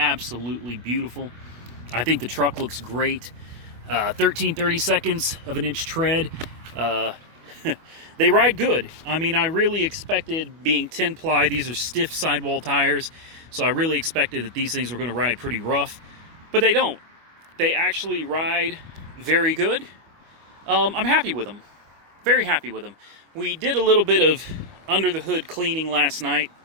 beautiful. I think the truck looks great. 13-30 seconds of an inch tread. They ride good. I mean, I really expected, being 10-ply, these are stiff sidewall tires, so I really expected that these things were going to ride pretty rough, but they don't. They actually ride very good. I'm happy with them. Very happy with them. We did a little bit of under the hood cleaning last night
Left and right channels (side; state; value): left; late; 25 ms